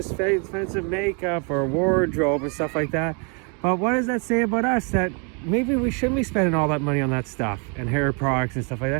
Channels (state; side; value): quieter; left; 35.9 dB